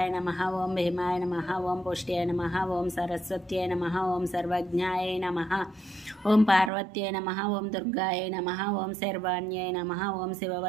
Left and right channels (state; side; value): drops out; left; at 6.7 s